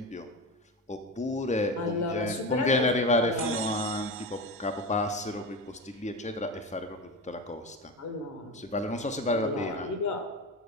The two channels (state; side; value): normal; both; correlation 0.23